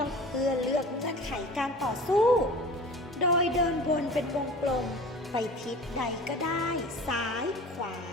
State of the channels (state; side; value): normal; both; correlation 0.40